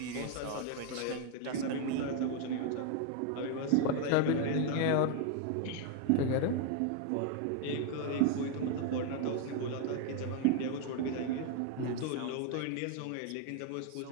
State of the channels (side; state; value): both; different; correlation 0.00